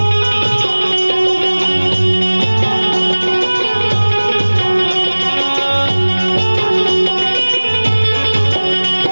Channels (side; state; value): both; inverted; correlation -1.00